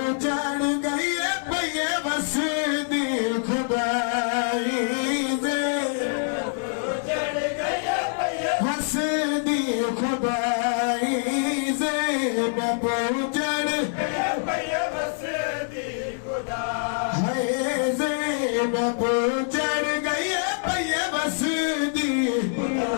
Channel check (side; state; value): right; silent; 62 dB below the other